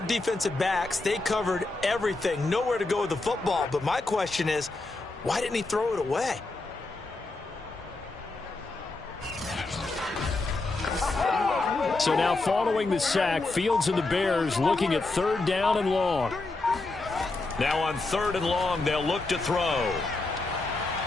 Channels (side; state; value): right; quieter; 3.3 dB